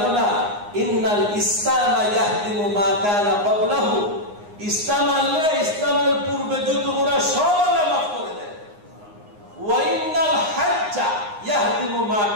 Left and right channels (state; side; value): late; left; 9.7 ms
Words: না ইন্নাল ইসলাম ইয়াহদিমু মা কানা ক্বাবলাহু, ইসলাম আনলে ইসলামের পূর্বে যত গুনাহ সব আল্লাহ মাফ করে দেন। ওয়া ইন্নাল হাজ্জা ইয়াহদিমু মা